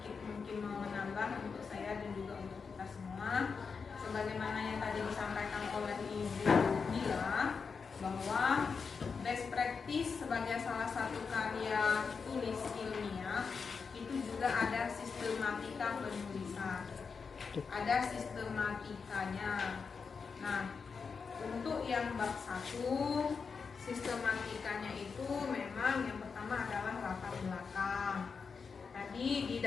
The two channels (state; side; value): quieter; right; 5.4 dB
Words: mungkin mau menambah untuk saya dan juga untuk kita semua, sebagaimana yang tadi disampaikan oleh Ibu Mila, bahwa best practice sebagai salah satu karya tulis ilmiah itu juga ada sistematika penulisan, ada sistematikanya. Nah, untuk yang bab 1, sistematikanya itu memang yang pertama adalah latar belakang. Tadi di